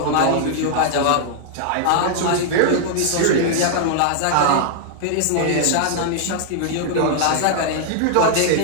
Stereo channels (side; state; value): both; different; correlation -0.01